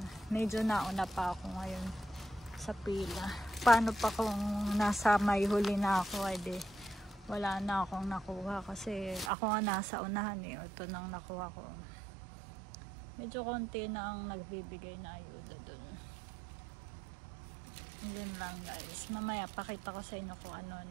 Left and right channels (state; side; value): drops out; left; at 9.3 s